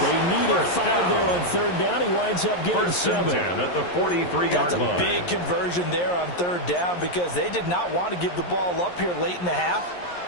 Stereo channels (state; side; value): late; right; 11 ms